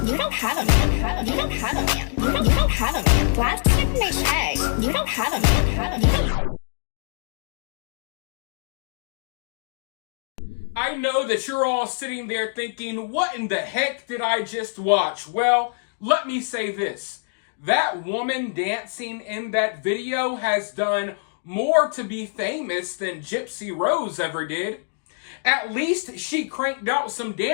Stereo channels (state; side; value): silent; right; digital silence